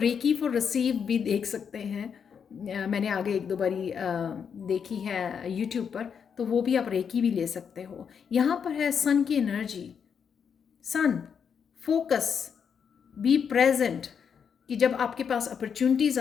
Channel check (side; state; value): right; quieter; 7.0 dB